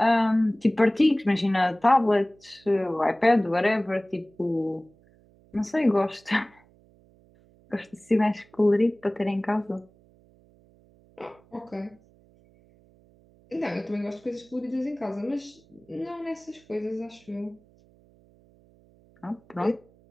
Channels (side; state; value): right; noise; hum, 30 dB below the sound